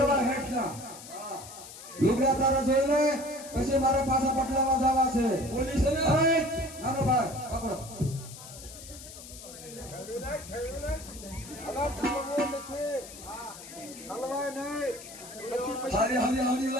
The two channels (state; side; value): noise; left; hiss, 15 dB below the sound